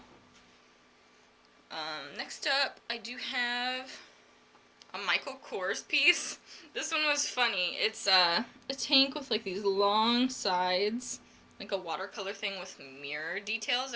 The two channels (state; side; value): identical; both; correlation 1.00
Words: Next up, I do have a Michael Kors piece. This one was funny. It's a tank with like these long sides, like a watercolor thing with mirror details